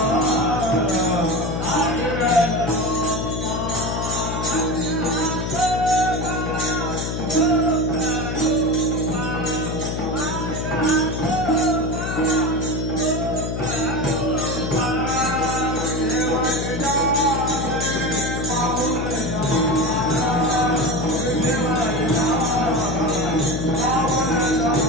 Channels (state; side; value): noise; left; hum, 3 dB below the sound